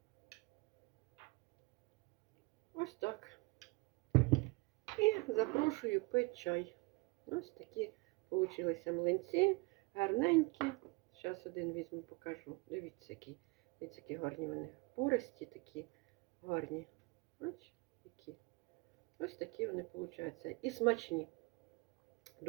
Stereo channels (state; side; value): quieter; left; 26.7 dB